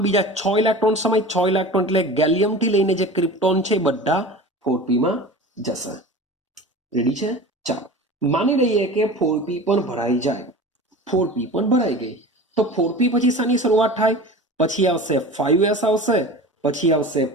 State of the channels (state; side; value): normal; both; correlation 0.35